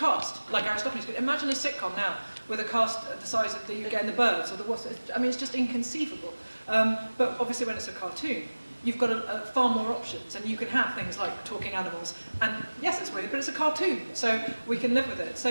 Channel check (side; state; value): both; inverted; correlation -1.00